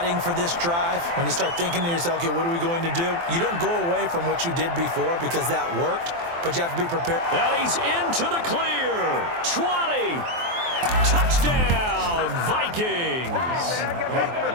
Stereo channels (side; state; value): left; late; 23 ms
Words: for this drive, when you start thinking to yourself, okay, what are we going to do? You don't go away from what you did before because that worked, but you have to be prepared. And he's into the clear. 20. Touchdown, Vikings.